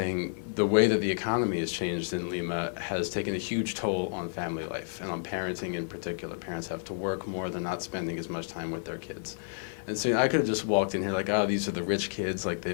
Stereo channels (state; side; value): silent; right; digital silence